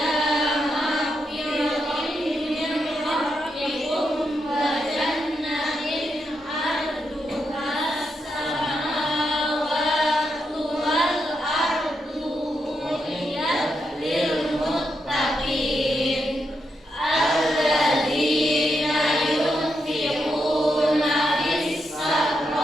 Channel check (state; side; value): normal; both; correlation 0.83